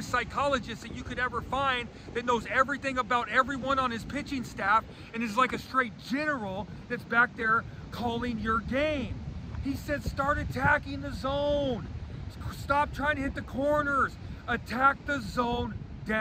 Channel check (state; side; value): identical; both; correlation 1.00